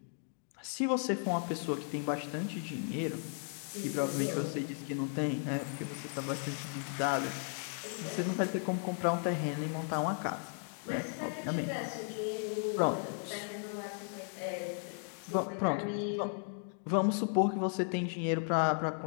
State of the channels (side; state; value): right; silent; 54 dB below the other